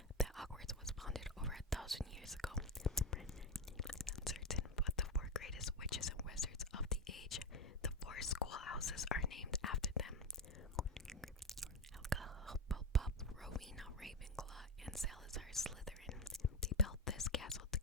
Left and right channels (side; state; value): both; normal; correlation 0.13